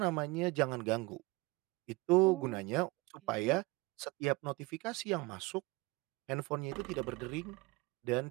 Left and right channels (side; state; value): left; quieter; 23.7 dB